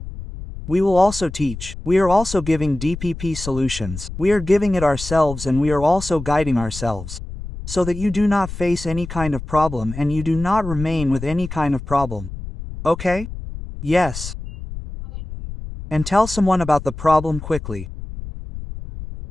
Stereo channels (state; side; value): noise; left; rumble, 10 dB below the sound